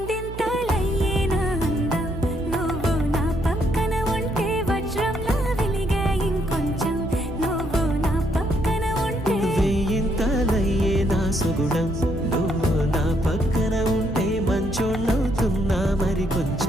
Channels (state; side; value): noise; right; hum, 10 dB below the sound